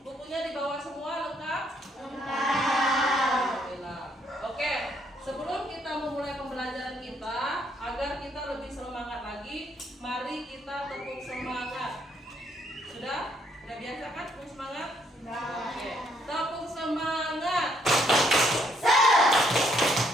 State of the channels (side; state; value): both; normal; correlation 0.70